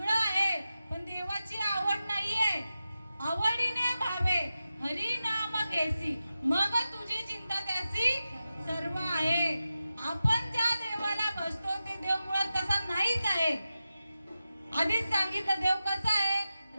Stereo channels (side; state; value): both; inverted; correlation -0.92